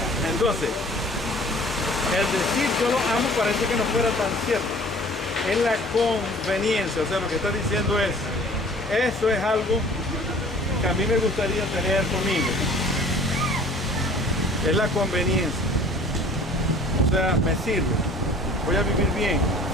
Entonces, el decir yo lo amo parece que no fuera tan cierto. Es la conveniencia, o sea, lo que está diciendo es, eso es algo que a mí me gustaría tener conmigo. Es la conveniencia. O sea, me sirve. Voy a vivir bien,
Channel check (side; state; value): both; normal; correlation 0.49